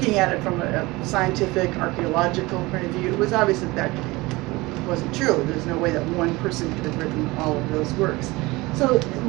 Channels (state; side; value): quieter; left; 21.8 dB